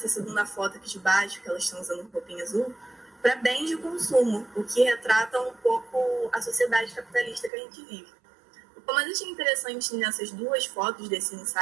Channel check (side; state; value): left; drops out; at 7.5 s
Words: segunda foto aqui de baixo, que elas estão usando roupinha azul, para bens de consumo, o que retrata um pouco a sociedade capitalista que a gente vive. O que eu mais achei interessante nessas 2 fotos desse